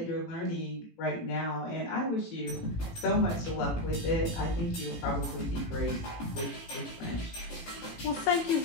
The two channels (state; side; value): late; right; 18 ms